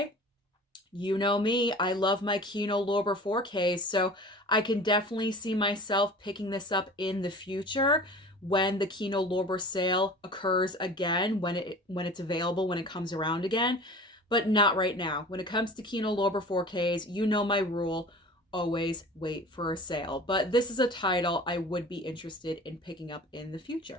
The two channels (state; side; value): normal; both; correlation 0.40